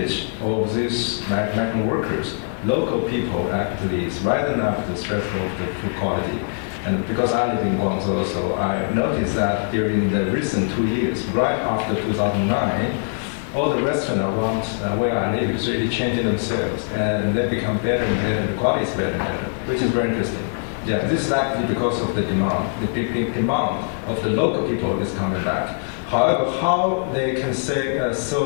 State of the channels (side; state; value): right; silent; digital silence